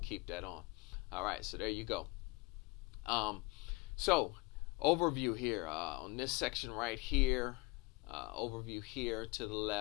keep that on. All right, so there you go. So overview here on this section right here, overview here to the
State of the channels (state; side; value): quieter; right; 23.9 dB